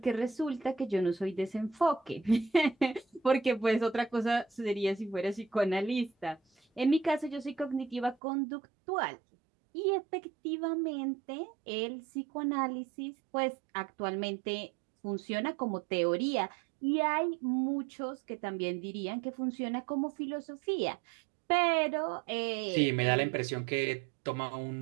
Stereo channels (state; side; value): drops out; left; at 8.2 s